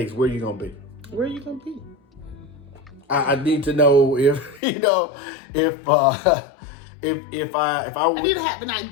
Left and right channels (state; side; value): drops out; right; at 4.6 s